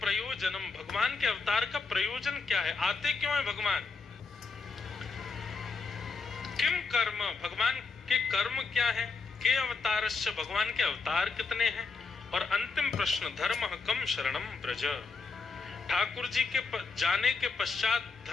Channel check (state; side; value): quieter; right; 4.6 dB